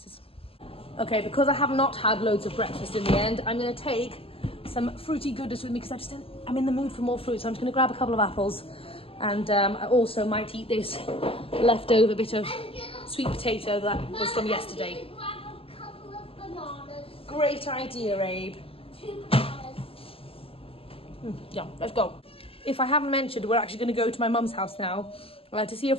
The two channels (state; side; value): late; right; 0.27 ms